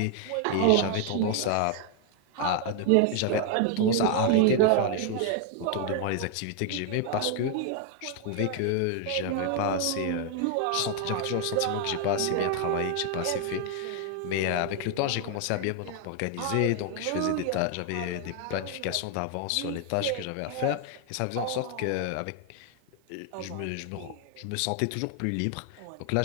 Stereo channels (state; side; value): different; both; correlation 0.00